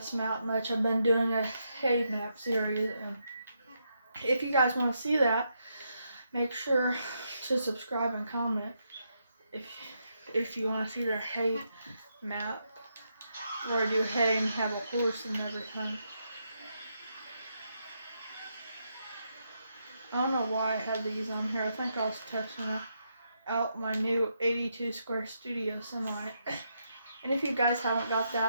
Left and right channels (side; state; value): both; inverted; correlation -0.80